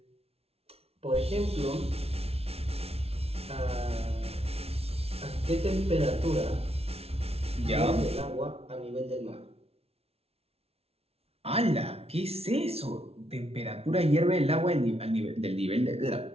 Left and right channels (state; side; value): late; left; 0.30 ms